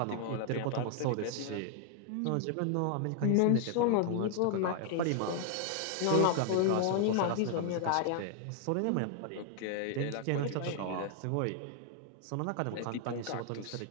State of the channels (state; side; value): different; both; correlation 0.00